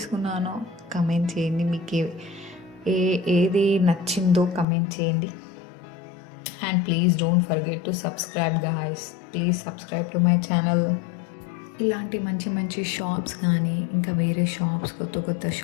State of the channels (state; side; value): drops out; right; at 4.7 s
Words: కమెంట్ చేయండి, మీకు ఏది నచ్చిందో కమెంట్ చేయండి. And please don't forget to subscribe guys, please subscribe to my channel. ఇలాంటి మంచి మంచి షాప్స్ కానీ ఇంకా వేరే షాప్స్, కొత్త కొత్త